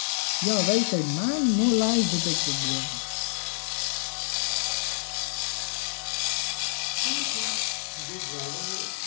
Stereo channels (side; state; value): right; silent; digital silence